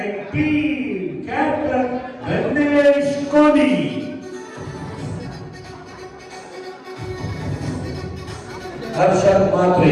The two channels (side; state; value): both; identical; correlation 1.00